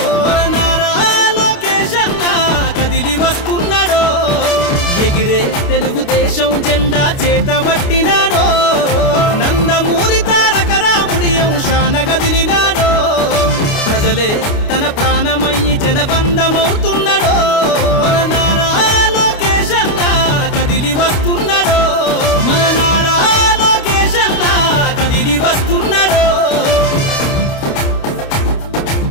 మన నారా లోకేష్ అన్న కదిలి వస్తున్నాడో ఎగిరే తెలుగుదేశం జెండా చేతబట్టినాడో నందమూరి తారక రాముడి అంశాన కదిలినాడో ప్రజలే తన ప్రాణమయ్యి జనబంధమవుతున్నాడో మన నారా లోకేష్ అన్న కదిలి వస్తున్నాడో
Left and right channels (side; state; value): right; late; 29 ms